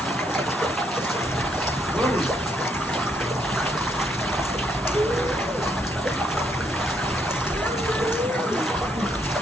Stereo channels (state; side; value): normal; both; correlation 0.73